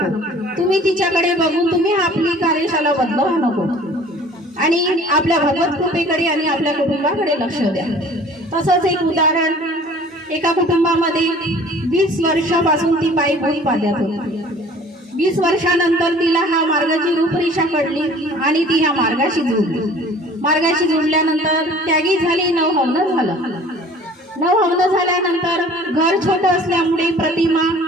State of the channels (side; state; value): both; normal; correlation 0.49